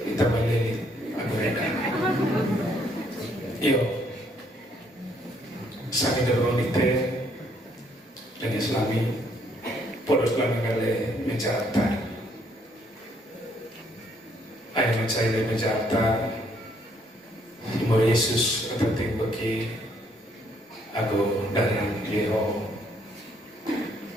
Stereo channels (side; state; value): both; normal; correlation 0.69